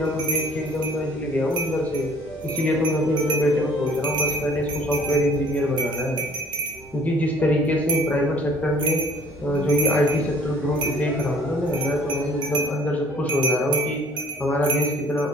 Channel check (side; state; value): both; normal; correlation 0.54